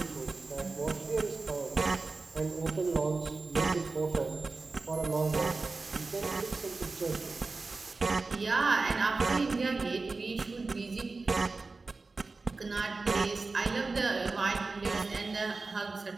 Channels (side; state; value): left; quieter; 3.8 dB